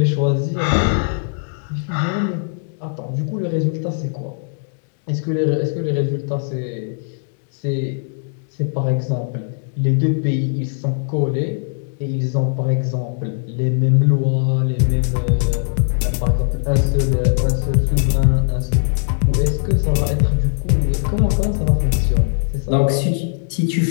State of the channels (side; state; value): right; silent; digital silence